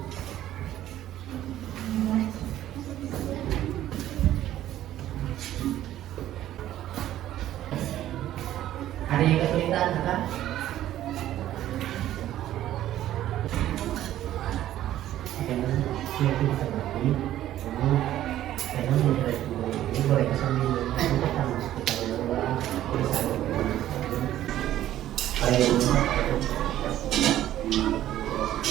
Ada yang kesulitan kan?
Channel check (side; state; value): left; quieter; 12.9 dB